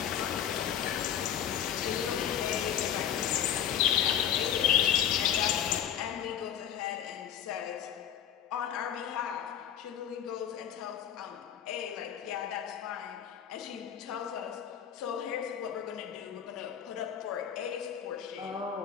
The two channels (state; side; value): quieter; right; 9.7 dB